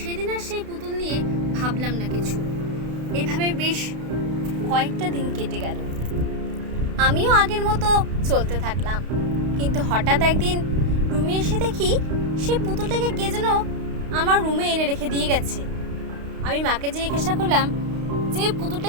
আর সেই পুতুল নিয়ে ভাবলাম না কিছু। এভাবে বেশ কয়েকটা দিন কেটে গেল। আমিও আগের মতো চলতে থাকলাম। কিন্তু হঠাৎ একদিন রুমে এসে দেখি সেই পুতুলটাকে কে যেন আমার রুমে এনে রেখে দিয়ে গেছে। আমি মাকে জিজ্ঞাসা করলাম যে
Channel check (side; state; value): left; late; 32 ms